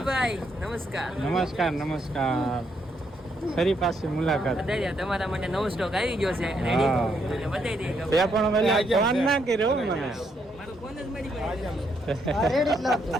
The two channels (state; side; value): normal; both; correlation 0.75